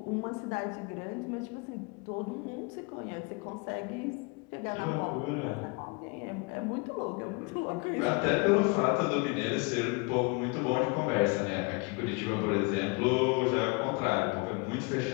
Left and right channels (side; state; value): right; quieter; 30.1 dB